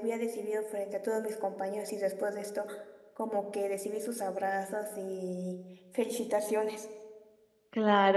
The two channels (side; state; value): both; identical; correlation 1.00